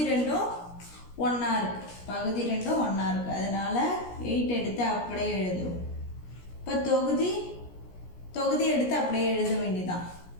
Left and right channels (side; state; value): right; late; 17 ms